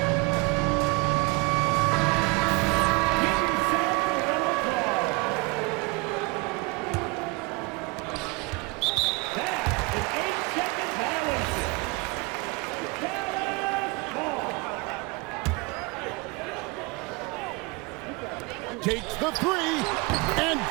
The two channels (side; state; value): left; quieter; 27.0 dB